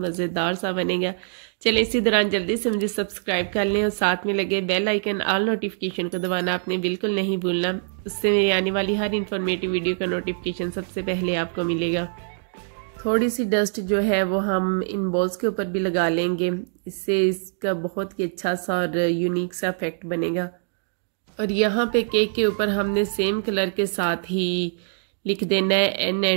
सा बनेगा। चलें इसी दौरान जल्दी से मुझे सब्सक्राइब कर लें और साथ में लगे बेल आइकन ऑल नोटिफिकेशन को दबाना आपने बिल्कुल नहीं भूलना। उससे मेरी आने वाली हर इन्फॉर्मेटिव वीडियो का नोटिफिकेशन सबसे पहले आपको मिलेगा। थोड़ी सी डस्ट जो है वो हम इन बॉल्स के ऊपर भी लगा लेंगे, इससे इसका बहुत ही अच्छा सा और यूनिक सा इफेक्ट बनेगा। और यहाँ पे केक के ऊपर हमने सेम कलर के साथ ही लिख देना है N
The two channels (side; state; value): left; silent; digital silence